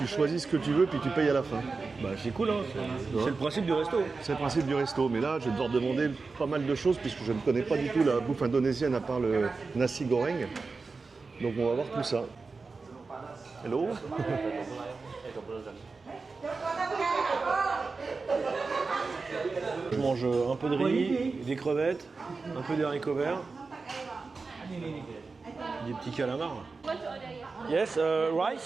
choisis ce que tu veux puis tu payes à la fin. Bah c'est cool hein, c'est le principe du resto. C'est le principe du resto, mais là je vais devoir demander pas mal de choses puisque je ne connais pas du tout la bouffe indonésienne à part le nasi goreng. Donc on va voir tout ça. Hello. Je mange un peu de riz, des crevettes, un peu d'haricots verts, des petits calamars. Yes,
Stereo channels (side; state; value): left; quieter; 4.2 dB